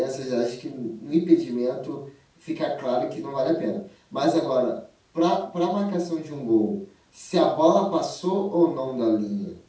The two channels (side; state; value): both; identical; correlation 1.00